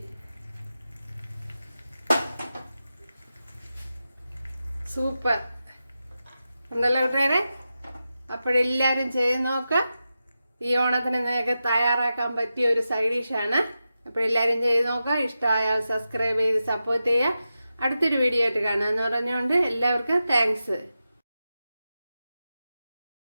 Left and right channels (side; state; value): both; inverted; correlation -0.91